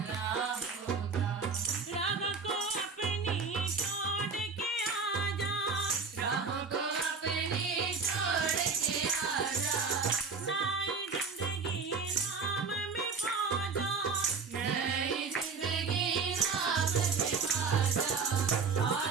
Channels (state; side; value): quieter; left; 4.9 dB